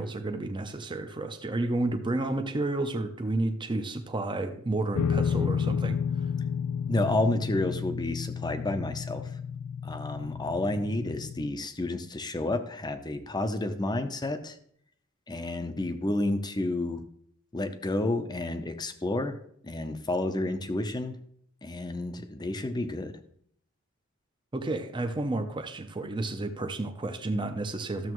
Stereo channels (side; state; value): both; normal; correlation 0.73